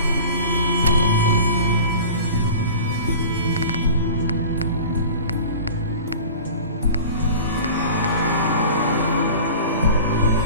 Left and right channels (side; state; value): both; inverted; correlation -0.38